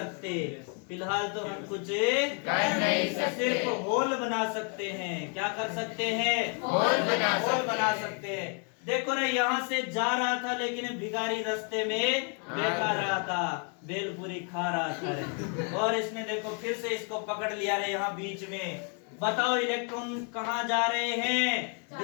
फिलहाल तो हम कुछ कर नहीं सकते। सिर्फ होल बना सकते हैं। क्या कर सकते हैं? होल बना होल सकते हैं। देखो रे, यहाँ से जा रहा था लेकिन भिखारी रास्ते में बैठा रहा था, बेलपूरी खा रहा था रे। और इसने देखो फिर से इसको पकड़ लिया रे यहाँ बीच में। बताओ इलेक्ट्रॉन कहाँ जा रहे हैं?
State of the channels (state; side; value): quieter; right; 38.5 dB